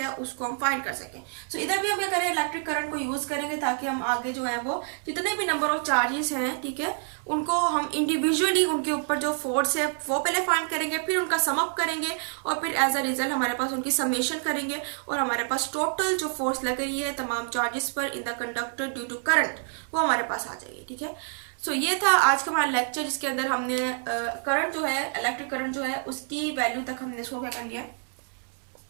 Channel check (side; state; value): left; silent; 60 dB below the other